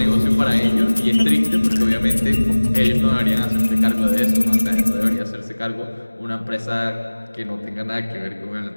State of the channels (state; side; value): inverted; both; correlation -1.00